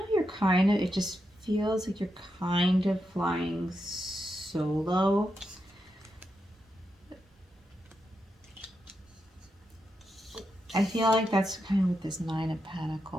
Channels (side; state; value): both; normal; correlation 0.85